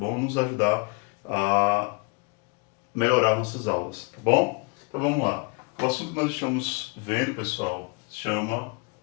Nos ajudar a melhorar nossas aulas, tá bom? Então vamos lá. O assunto que nós estamos vendo, pessoal, se chama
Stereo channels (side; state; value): right; quieter; 32.3 dB